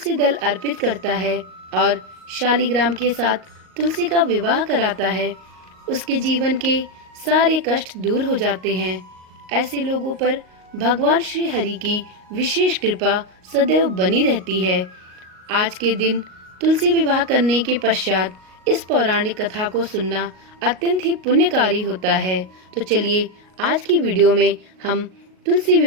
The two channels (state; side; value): late; left; 37 ms